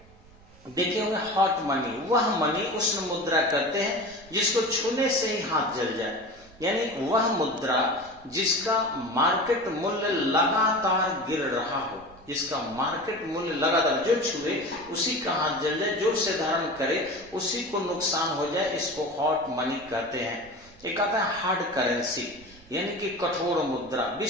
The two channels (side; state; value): right; noise; rumble, 24 dB below the sound